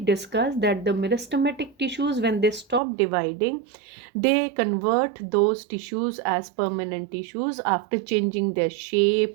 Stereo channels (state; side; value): drops out; left; at 2.8 s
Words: that the meristematic tissues, when they stop dividing, they convert those tissues as permanent tissues after changing their